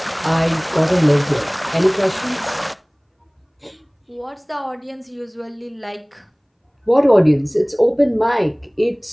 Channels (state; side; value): identical; both; correlation 1.00